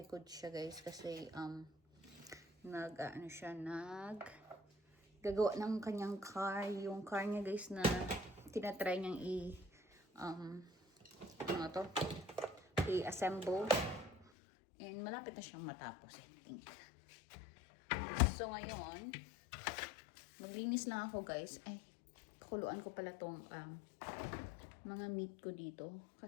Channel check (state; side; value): drops out; right; at 14.2 s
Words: siya guys kasi gagawa ng kanyang car. Yung car niya guys na tinatry niyang i-assemble. And malapit na siyang matapos, I think. So, ngayon, maglinis lang ako, guys. Ay, pakuluan ko pala tong mga meat ko dito.